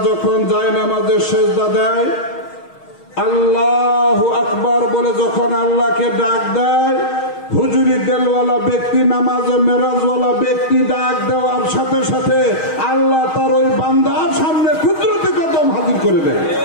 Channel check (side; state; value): right; late; 6.4 ms